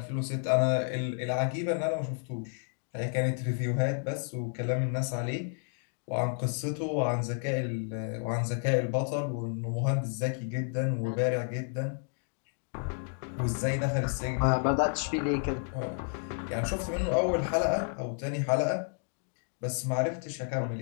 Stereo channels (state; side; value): silent; right; 57 dB below the other